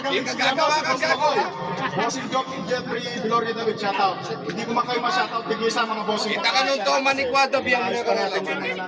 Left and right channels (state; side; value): identical; both; correlation 1.00